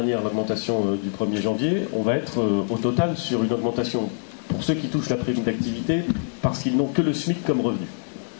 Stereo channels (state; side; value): silent; right; digital silence